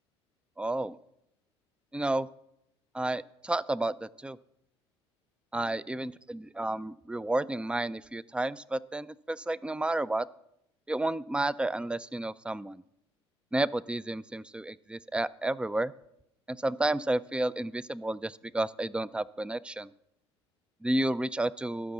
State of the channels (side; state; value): both; normal; correlation 0.93